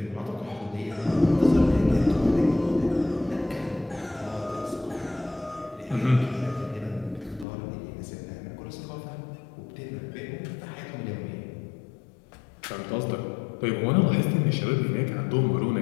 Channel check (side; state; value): right; drops out; at 7.5 s